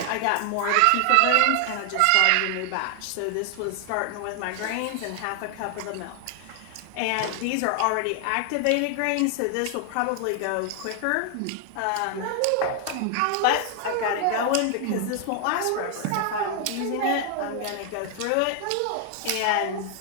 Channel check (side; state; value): both; different; correlation 0.00